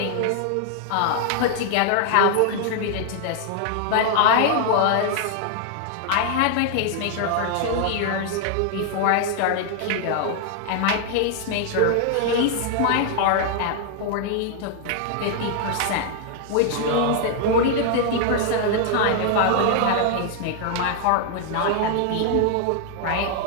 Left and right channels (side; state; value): both; different; correlation 0.00